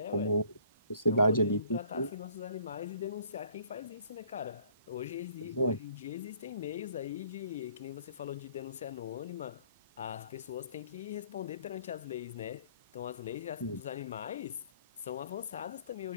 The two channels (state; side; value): inverted; both; correlation -0.57